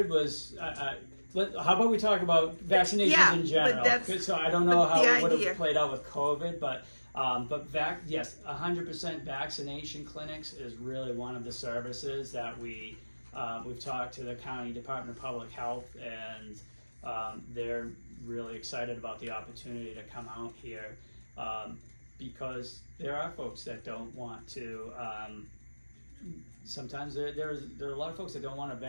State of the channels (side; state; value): both; inverted; correlation -1.00